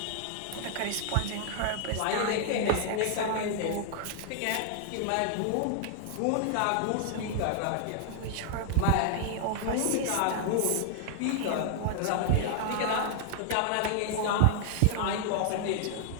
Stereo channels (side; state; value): both; different; correlation 0.00